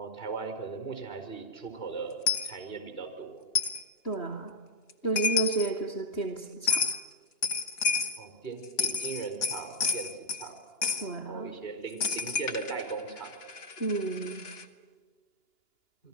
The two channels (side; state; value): right; late; 2.9 ms